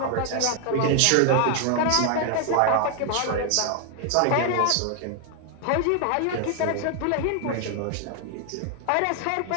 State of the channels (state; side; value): different; both; correlation 0.00